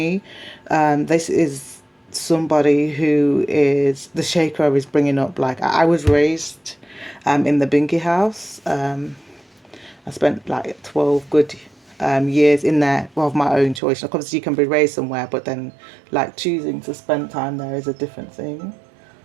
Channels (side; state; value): left; drops out; at 13.8 s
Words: This is somebody who is, the shaker is bringing up, like, I was raised in the Binky house. I spent like 12 good years in there of my own choice. Like, obviously you can be raised somewhere, but then like choosing to spend time there is a different thing.